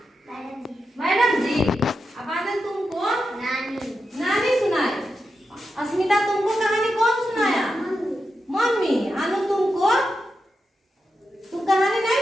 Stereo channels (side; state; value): both; normal; correlation 0.88